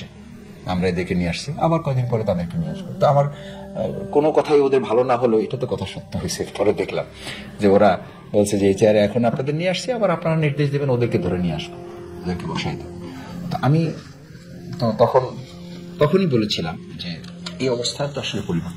আমরা এদেরকে নিয়ে আসছি, আবার কয়েকদিন পরে তাদেরকে নিয়ে আসবো। তো আমার কোনো কথাই ওদের ভালো না হলো, এটা তো কথা সত্য হয়েছে। পরে দেখলাম যে ওরা বলছে যে এই চেয়ারে এখন আপনাদের নিয়ে আসছি, আবার আপনারা নির্দেশ দেবেন ওদেরকে ধরে নিয়ে আসবো, ওদেরকে বসাই দেবো। তো আমি তখনই বলেছিলাম যে এই অবস্থা তো আসলে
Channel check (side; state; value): both; identical; correlation 1.00